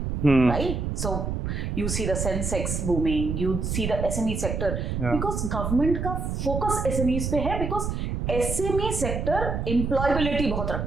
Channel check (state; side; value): noise; right; rumble, 2 dB below the sound